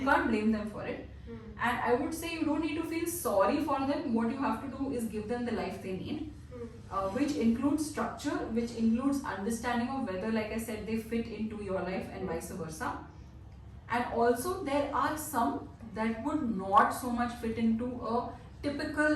blame them for it. And I would say you don't need to feel sorry for them. What you have to do is give them the life they need, which includes structure, which includes understanding of whether, like I said, they fit into your life and vice versa. And also there are some that would not so much fit into a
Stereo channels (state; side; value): identical; both; correlation 1.00